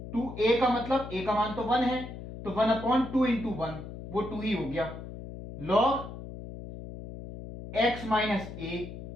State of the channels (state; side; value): noise; left; hum, 11 dB below the sound